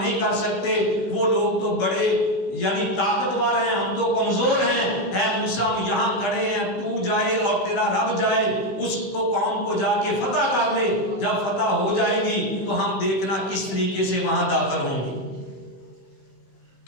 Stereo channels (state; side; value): late; right; 15 ms